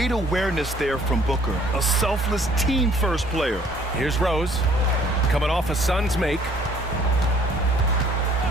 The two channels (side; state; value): both; normal; correlation 0.59